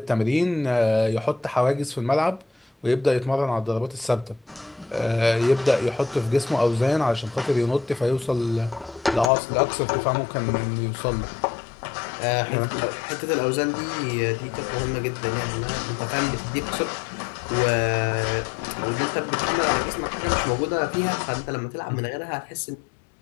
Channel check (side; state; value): right; drops out; at 9.3 s